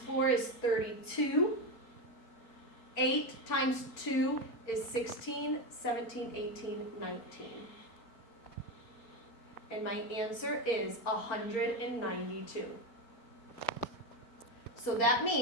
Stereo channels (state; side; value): late; right; 4.3 ms